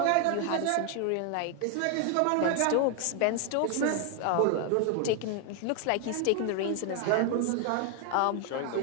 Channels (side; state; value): both; different; correlation 0.00